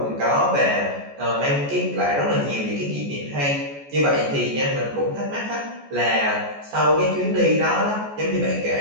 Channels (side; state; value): left; late; 14 ms